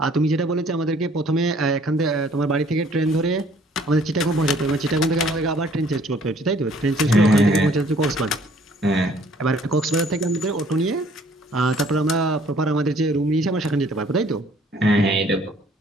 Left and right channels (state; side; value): normal; both; correlation 0.59